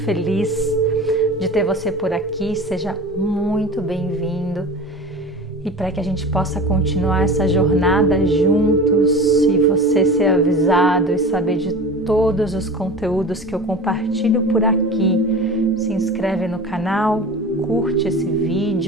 de ter você por aqui. Seja muito bem-vindo e para que a gente possa continuar essa jornada juntos e você ser avisado e saber de todos os conteúdos que eu compartilho por aqui. Se inscreve no canal, curte esse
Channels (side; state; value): left; noise; hum, 28 dB below the sound